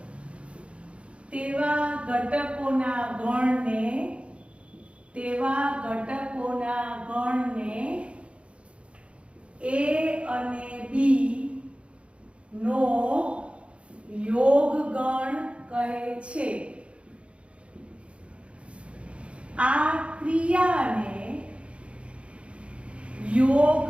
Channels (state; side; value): late; left; 0.060 ms